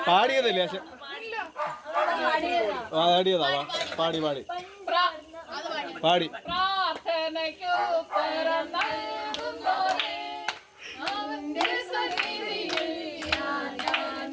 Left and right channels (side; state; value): both; identical; correlation 1.00